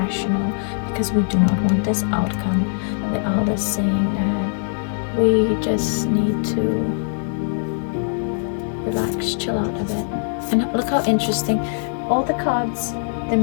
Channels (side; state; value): right; silent; 65 dB below the other